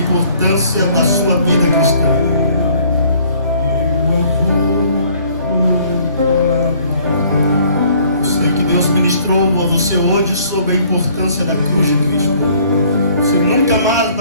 da sua vida cristã. ministrou a você hoje sobre a importância da cruz de Cristo. Você nunca mais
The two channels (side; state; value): both; inverted; correlation -0.59